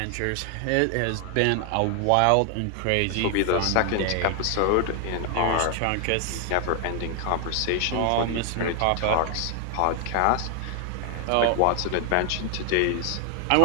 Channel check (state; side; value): different; both; correlation 0.00